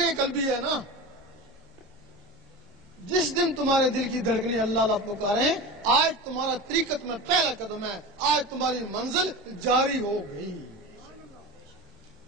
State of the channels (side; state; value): both; normal; correlation 0.29